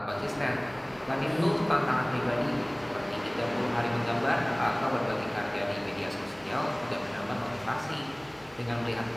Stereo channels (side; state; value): left; noise; hum, 28 dB below the sound